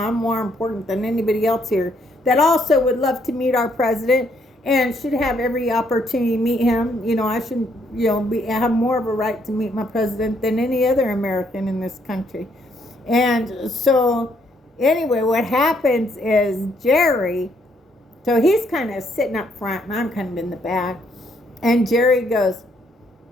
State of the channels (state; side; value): normal; both; correlation 0.71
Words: I'm more important than anybody else here that also would love to meet our president and should have every opportunity to meet him. I should, have more of a right to meet my president than any other American in this country. And so anyway, what happens is Jerry, so he's kind of sitting up front and I'm kind of in the back. And Jerry goes,